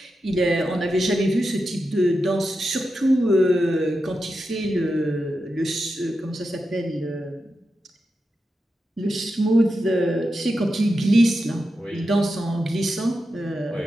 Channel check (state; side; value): normal; both; correlation 0.89